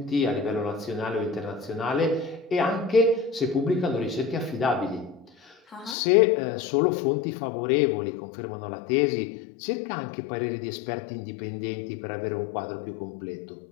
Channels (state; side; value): drops out; right; at 6.0 s